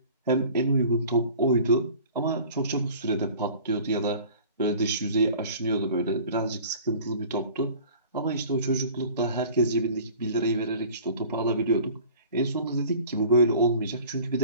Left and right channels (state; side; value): inverted; both; correlation -0.46